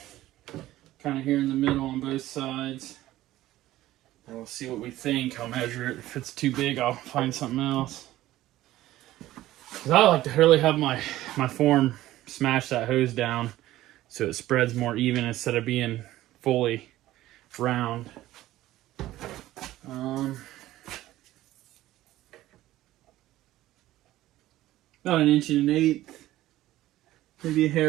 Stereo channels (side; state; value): left; quieter; 15.3 dB